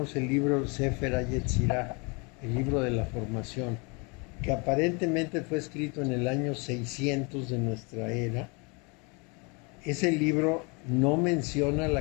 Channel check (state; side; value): quieter; right; 30.9 dB